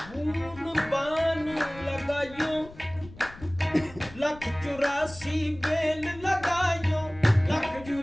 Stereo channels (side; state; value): left; noise; rumble, 18 dB below the sound